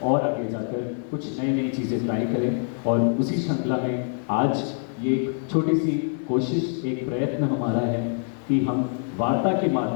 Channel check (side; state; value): right; silent; 62 dB below the other